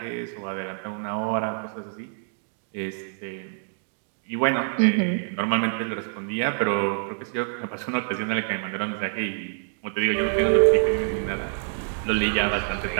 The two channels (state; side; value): silent; left; 61 dB below the other